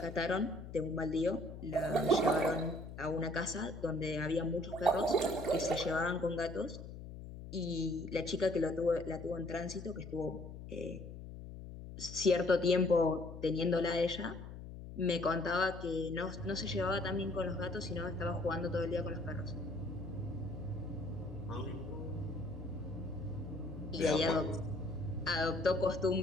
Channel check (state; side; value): noise; left; hum, 11 dB below the sound